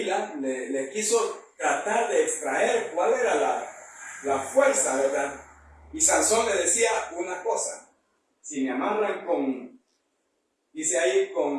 le quiso tratar de extraer cuál era la fuerza, ¿verdad? Y Sansón le decía una cosa: si me amarran dice ahí,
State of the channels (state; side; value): identical; both; correlation 1.00